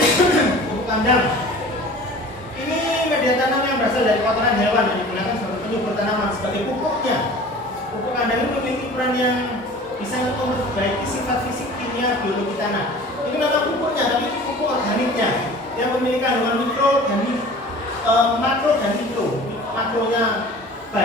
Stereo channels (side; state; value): both; normal; correlation 0.43